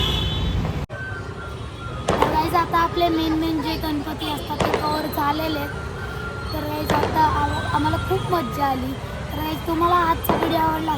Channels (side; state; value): both; identical; correlation 1.00